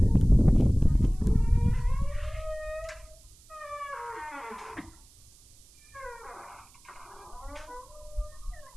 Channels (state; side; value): noise; right; hiss, 27 dB below the sound